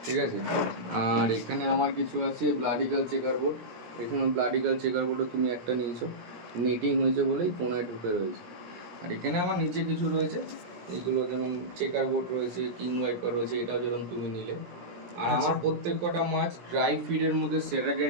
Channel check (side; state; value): left; late; 17 ms